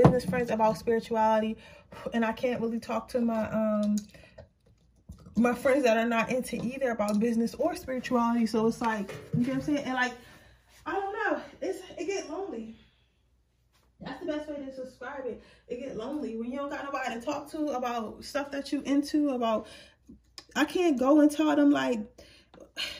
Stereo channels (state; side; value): identical; both; correlation 1.00